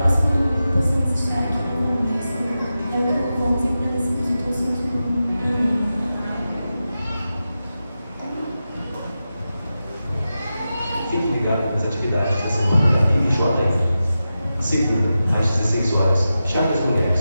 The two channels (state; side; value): inverted; both; correlation -0.92